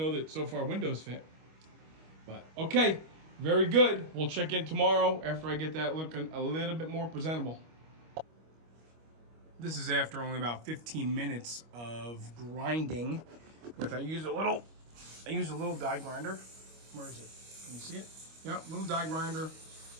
that so far windows fit. But, okay, very good. We'll check in tomorrow after I get that looking a little bit more presentable. This is after only about 15 minutes of grinding I use a little die grinder. Where is it? Can you see it? Yep, little die grinder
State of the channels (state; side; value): late; left; 25 ms